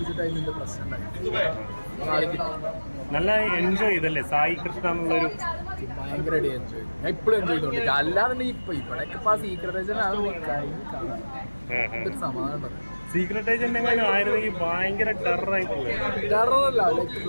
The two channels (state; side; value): inverted; both; correlation -1.00